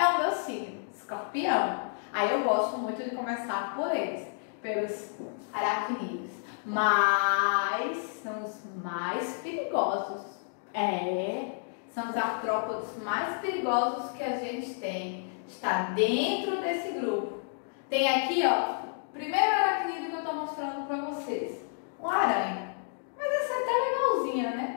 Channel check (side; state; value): right; silent; digital silence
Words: o meu signo, Escorpião. Aí eu gosto muito de começar por eles, pelos aracnídeos. Mas são os mais perigosos. São os artrópodes mais perigosos que a gente tem. Está dentro desse grupo. Tem aqui, ó, primeiro aracnídeo que eu estou mostrando para vocês. Uma aranha. Mas essa é até legalzinha,